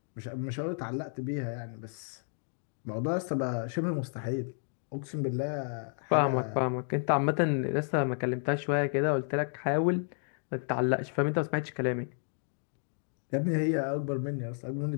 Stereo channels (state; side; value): silent; right; 57 dB below the other